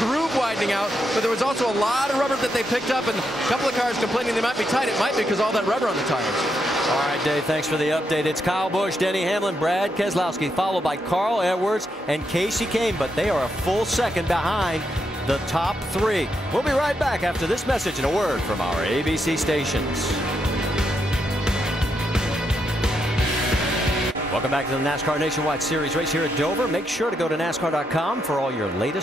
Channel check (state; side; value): normal; both; correlation 0.81